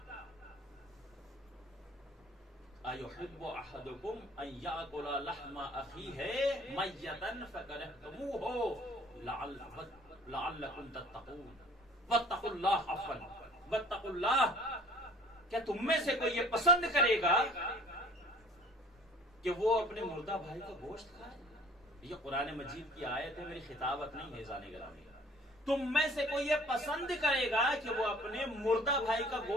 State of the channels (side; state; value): both; normal; correlation 0.51